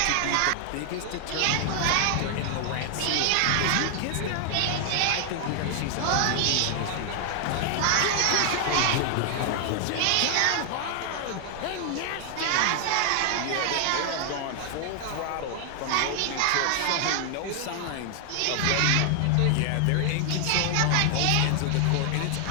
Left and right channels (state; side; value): different; both; correlation 0.00